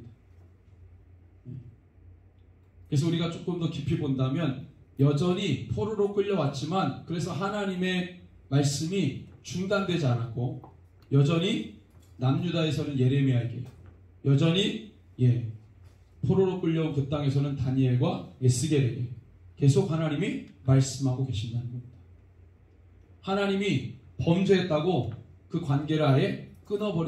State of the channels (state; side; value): identical; both; correlation 1.00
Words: 그래서 우리가 조금 더 깊이 본다면 여전히 포로로 끌려왔지만, 그래서 하나님의 말씀이 중단되지 않았고 여전히 남유다에서는 예레미야에게, 여전히 포로로 끌려온 그 땅에서는 다니엘과 에스겔에게 계속 하나님이 말씀하고 계신다는 겁니다. 하나님이 범죄했다고 그 관계를 아예